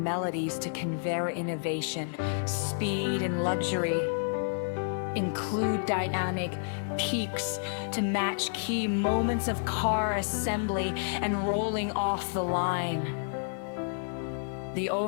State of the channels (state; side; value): silent; right; digital silence